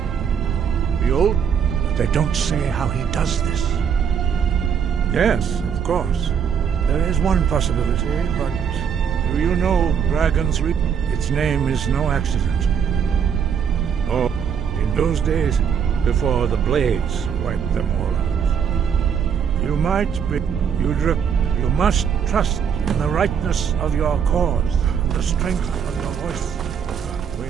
Behold, but they don't say how he does this. Yes, of course. There is one possibility, but do you know Dragon's Reap? Its name is no accident. Oh, in those days, before the Blades wiped them all out. You might be... You must trust in the rightness of your cause, and the strength of your voice.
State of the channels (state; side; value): quieter; left; 7.5 dB